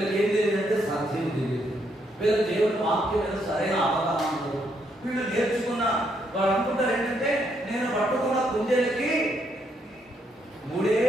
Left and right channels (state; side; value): normal; both; correlation 0.75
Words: ఏం తెలియదు అంటే సత్యం తెలియదు. వీళ్ళకి దేవుని వాక్యం మీద సరైన అవగాహన ఉండదు. వీళ్ళు నేర్చుకున్న వాళ్ళు అనుకుంటారు ఏంటంటే నేను పట్టుకున్న కుందేలకి 3